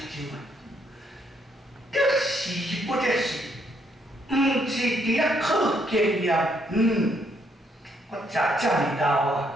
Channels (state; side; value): normal; both; correlation 0.72